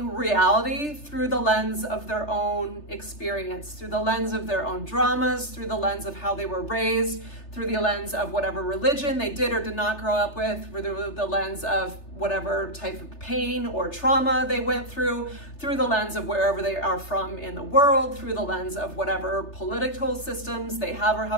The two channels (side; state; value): right; late; 3.3 ms